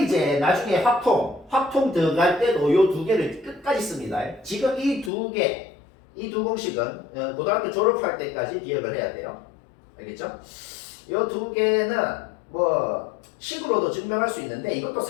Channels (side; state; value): right; drops out; at 5.1 s